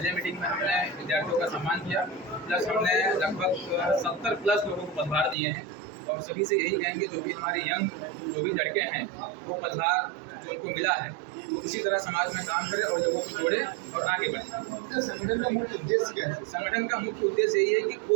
मीटिंग में हमने विद्यार्थियों का सम्मान किया, प्लस हमने लगभग 70+ लोगों को पदभार दिए हैं। और सभी से यही कहेंगे जो भी हमारे यंग जो भी लड़के हैं वो पदभार जो उनको मिला है वो इसी तरह समाज में काम करें और लोगों को जोड़े और आगे बढ़े। संगठन का मुख्य उद्देश्य क्या है? संगठन का मुख्य उद्देश्य यही है कि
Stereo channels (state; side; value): drops out; left; at 5.4 s